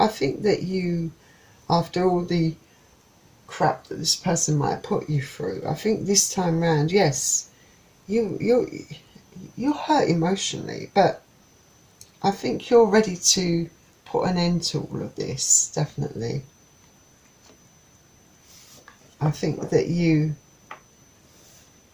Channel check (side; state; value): both; identical; correlation 1.00